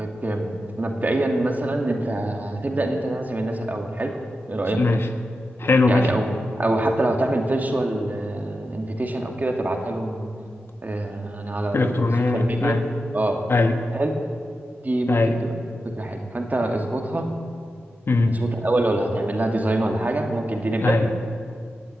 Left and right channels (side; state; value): both; normal; correlation 0.89